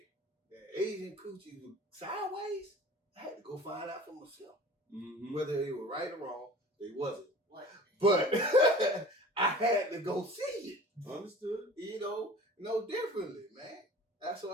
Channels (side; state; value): both; normal; correlation 0.42